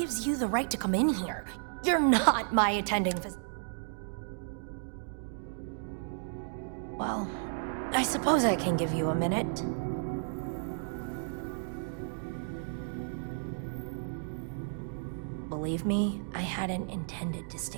you the right to come in here? You're not my attending Well, I suppose I can give you a minute. Believe me, I hadn't intended to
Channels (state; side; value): silent; left; digital silence